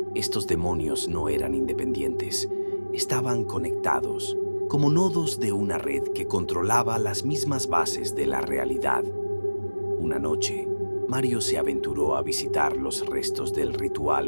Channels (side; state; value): both; inverted; correlation -1.00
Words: Estos demonios no eran independientes, estaban conectados, como nodos de una red que controlaba las mismas bases de la realidad. Una noche, Mario se aventuró a visitar los restos del